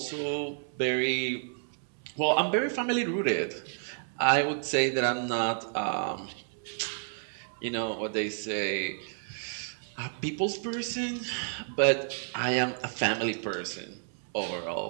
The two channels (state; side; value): silent; left; 57 dB below the other